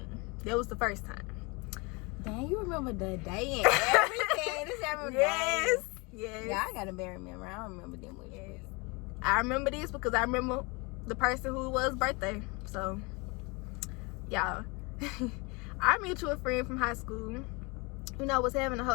That was the first time. Dang, you remember the day and everything. This every Yes. Yeah, I got a bad memory. I don't remember them with you. I remember this because I remember the person who it was birthday. So, y'all, our mutual friend from high school, was having a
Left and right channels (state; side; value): quieter; right; 28.3 dB